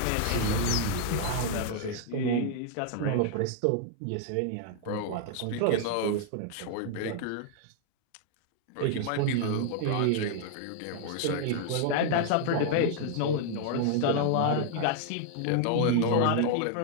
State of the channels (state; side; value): different; both; correlation 0.00